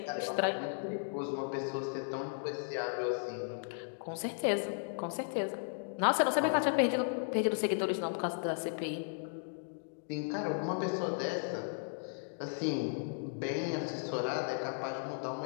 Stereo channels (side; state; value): right; silent; digital silence